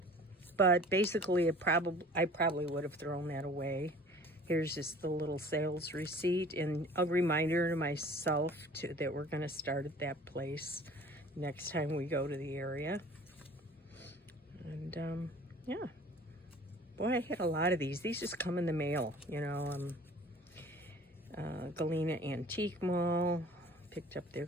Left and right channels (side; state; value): both; normal; correlation 0.47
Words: But basically, I probably would have thrown that away. Here's just the little sales receipt and a reminder to myself that we're going to start at that place next time we go to the area. And yeah, boy, I had a lot of these. These just come in the mail, you know. Galena Antique Mall, picked up their